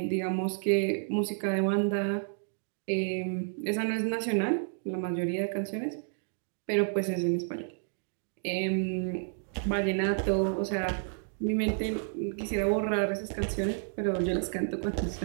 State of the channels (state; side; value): silent; left; digital silence